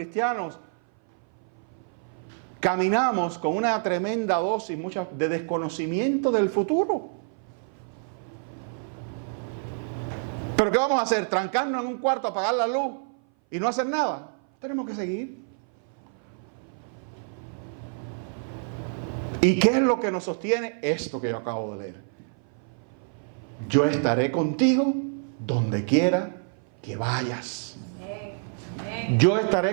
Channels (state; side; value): silent; left; 57 dB below the other